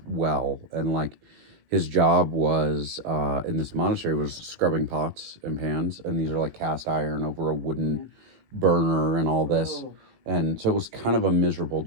well, and his job was in this monastery was scrubbing pots and pans, and these are cast iron over a wooden burner and all this. And so it was kind of a miserable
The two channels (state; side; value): late; left; 18 ms